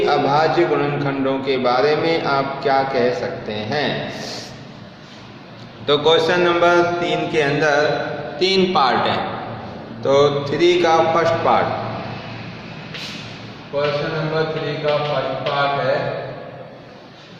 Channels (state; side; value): identical; both; correlation 1.00